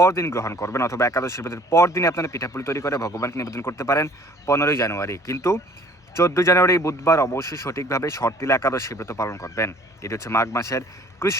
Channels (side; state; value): both; normal; correlation 0.55